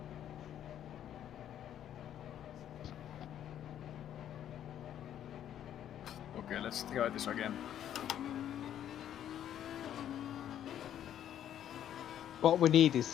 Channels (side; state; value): right; quieter; 10.6 dB